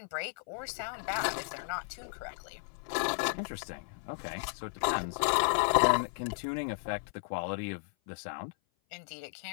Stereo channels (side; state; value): right; silent; 55 dB below the other